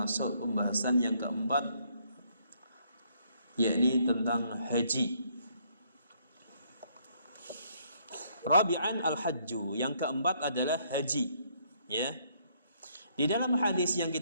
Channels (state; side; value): inverted; both; correlation -0.68